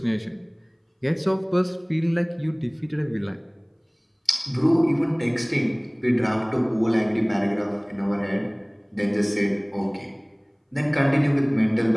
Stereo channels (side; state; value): both; identical; correlation 1.00